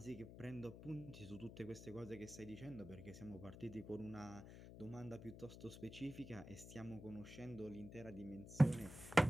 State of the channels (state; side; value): noise; left; hum, 13 dB below the sound